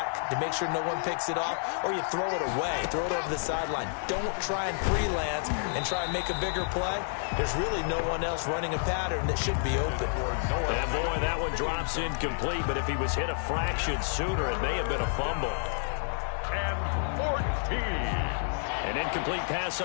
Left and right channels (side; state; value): right; silent; 58 dB below the other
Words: to make sure no one picks it off, or you throw it away, throw it over the sideline. Don't try and freelance and try and make a bigger play. There's really no one else running a pattern that should be open. And boy, that one drops incomplete, but if he was hit a fraction sooner, it may have been a fumble. And 14. An incomplete pass